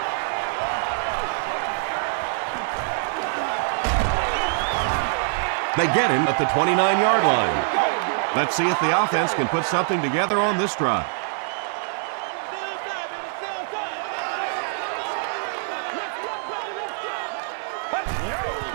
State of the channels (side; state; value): left; silent; 62 dB below the other